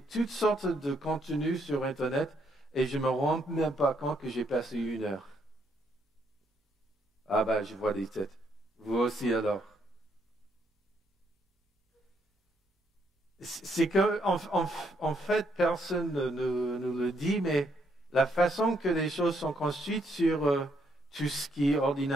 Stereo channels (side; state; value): both; normal; correlation 0.73